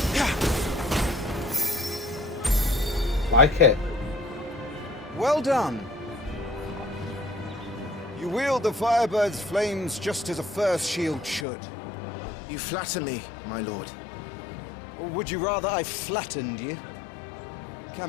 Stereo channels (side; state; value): right; drops out; at 11.5 s